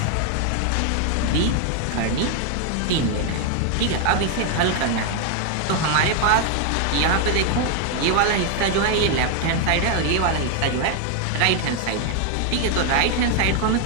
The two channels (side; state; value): both; different; correlation 0.00